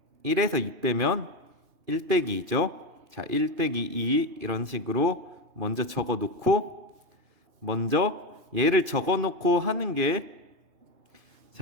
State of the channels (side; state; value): left; late; 2.5 ms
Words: 1에서 2 빼면 1 빼기 2죠. 자, 1 빼기 2 이런 식으로 먼저 적어 놓고, 먼저 얘를 적어 놓고 하는 게,